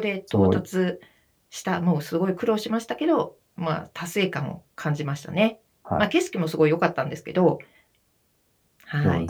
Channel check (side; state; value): both; identical; correlation 1.00